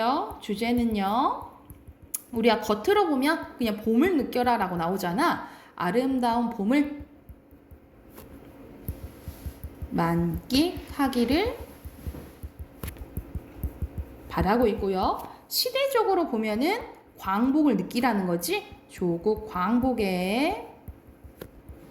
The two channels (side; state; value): both; identical; correlation 1.00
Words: 주제는요, 우리가 겉으로 보면 그냥 봄을 느껴라 라고 나오잖아. 아름다운 봄을 만끽하기를 바라고 있고요. 시대적으로 보면은 광복을 느끼라는 거지. 조국 광복의